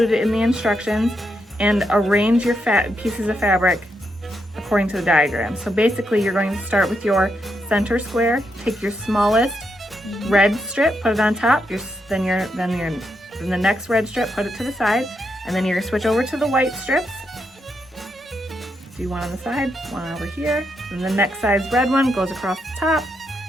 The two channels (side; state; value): both; normal; correlation 0.81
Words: in the instructions and arrange your pieces of fabric according to the diagram. So basically you're going to start with your center square, take your smallest red strip, put it on top, then the next red strip, put it to the side, and then you're going to switch over to the white strips. Do one on the side, one over here, and the next size red one goes across the top,